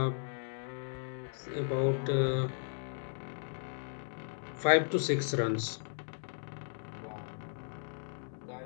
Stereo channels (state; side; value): silent; right; digital silence